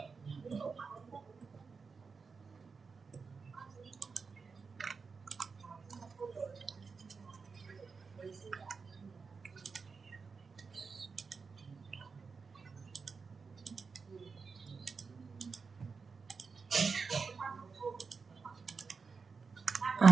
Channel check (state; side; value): quieter; left; 5.0 dB